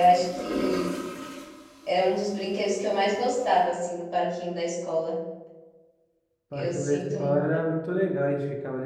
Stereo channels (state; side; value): identical; both; correlation 1.00